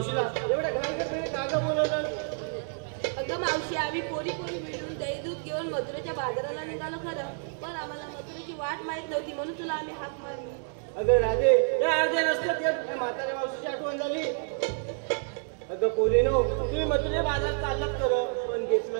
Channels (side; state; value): left; silent; 59 dB below the other